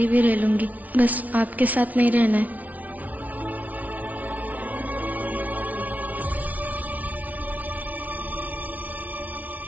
भी रह लूंगी, बस आपके साथ नहीं रहना है।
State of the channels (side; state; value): left; late; 0.073 ms